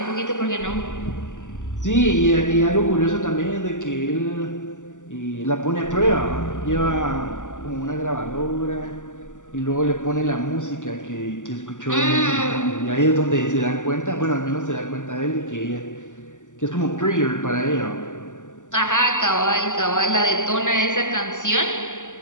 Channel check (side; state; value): right; late; 0.86 ms